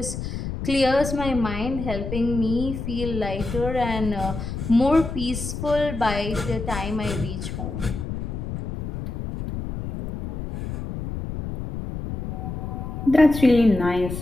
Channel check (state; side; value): noise; left; rumble, 6 dB below the sound